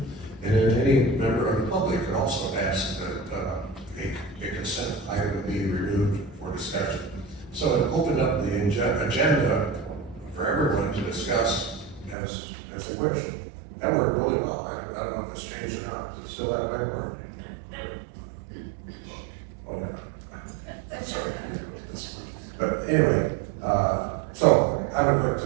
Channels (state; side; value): drops out; left; at 12.2 s